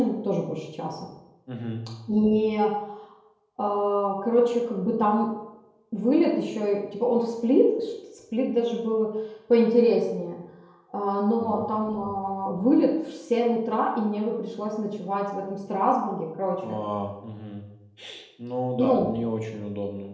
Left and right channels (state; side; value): identical; both; correlation 1.00